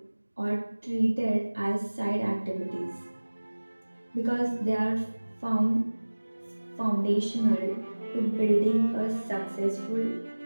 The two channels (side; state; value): both; inverted; correlation -1.00